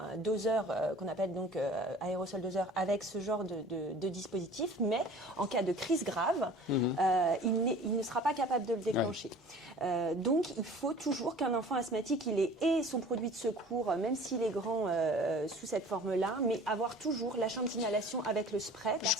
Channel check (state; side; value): normal; both; correlation 0.45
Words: doseur qu'on appelle donc aérosol doseur avec ce genre de dispositif, mais en cas de crise grave, il ne sera pas capable de le déclencher. Donc il faut toujours qu'un enfant asthmatique il ait son produit de secours, même s'il est grand sous cette forme-là, mais avoir toujours la chambre d'inhalation avec le spray